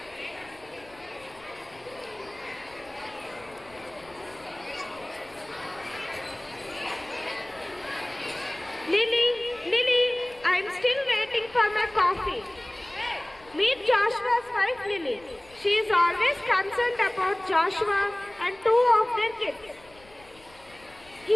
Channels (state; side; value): noise; left; rumble, 26 dB below the sound